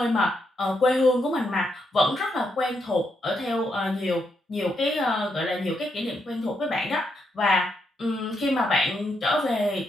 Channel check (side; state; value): both; normal; correlation 0.80